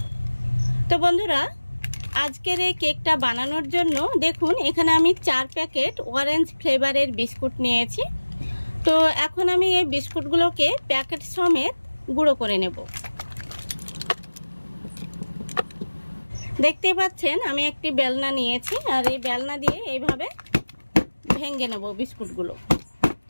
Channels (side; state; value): both; inverted; correlation -1.00